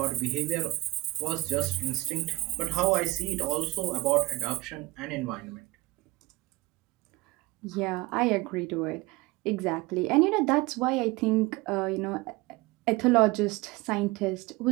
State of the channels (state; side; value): quieter; left; 20.4 dB